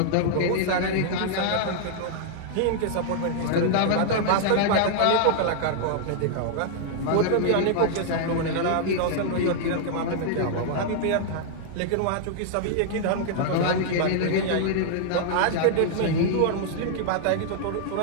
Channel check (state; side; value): different; both; correlation -0.01